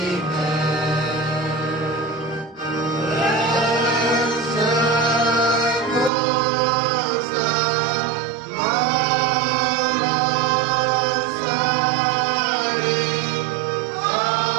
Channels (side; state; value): left; drops out; at 6.1 s